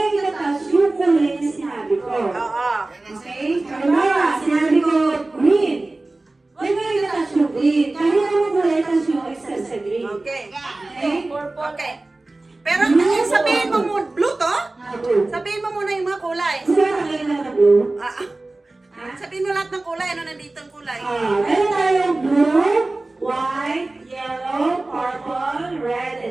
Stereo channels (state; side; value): quieter; left; 3.0 dB